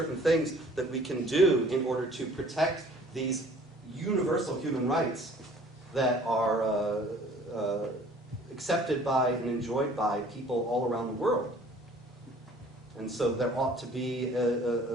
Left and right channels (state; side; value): normal; both; correlation 0.52